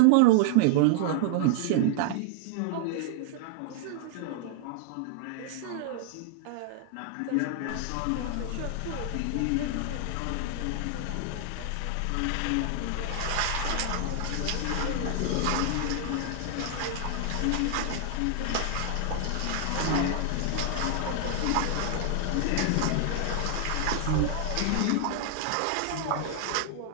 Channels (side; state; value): both; different; correlation 0.00